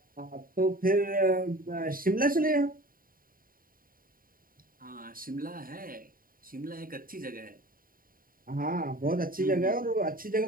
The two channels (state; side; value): late; left; 0.41 ms